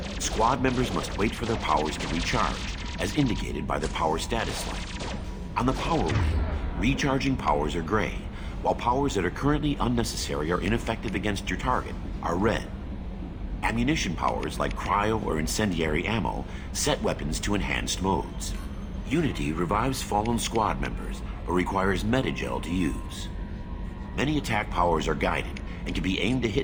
squad members must wait for their powers to recharge, as indicated by the power status light. On the power wheel, recharging powers are gray, while powers that are currently unnecessary or ineffective against your target are red. Ammunition powers like cryo or incendiary ammo set weapons to enhanced modes. Unity revives fallen squad members, but requires metagel to use. Many attack powers are guided, and can be aimed to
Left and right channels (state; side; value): identical; both; correlation 1.00